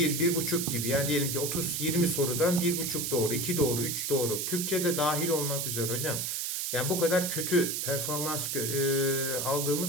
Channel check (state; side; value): noise; right; hiss, 1 dB below the sound